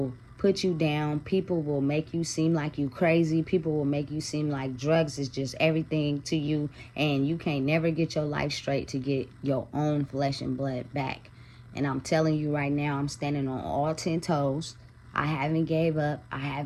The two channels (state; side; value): identical; both; correlation 1.00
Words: put you down. People will make you seem like you crazy. People will make you seem like drugs is just everything to you, and you can't never get your life straight to get your own flesh and blood back. And I'm telling you right now, I'm standing on all 10 toes. I haven't gave up. I